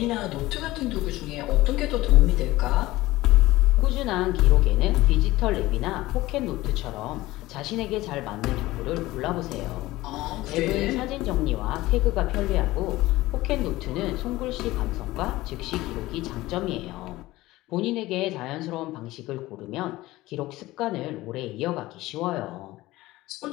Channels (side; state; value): right; quieter; 18.0 dB